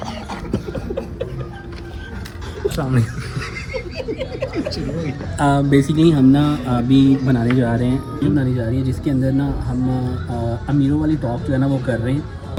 बेसिकली हम ना अभी बनाने जा रही है जिसके अंदर ना हम अमीरों वाली टॉप जो है ना वो कर रहे हैं।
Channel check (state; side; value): identical; both; correlation 1.00